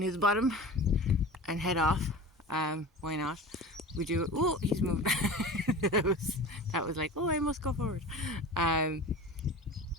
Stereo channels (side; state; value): both; normal; correlation 0.34